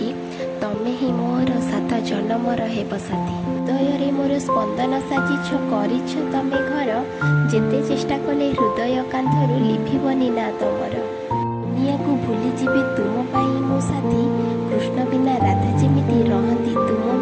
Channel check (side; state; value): both; identical; correlation 1.00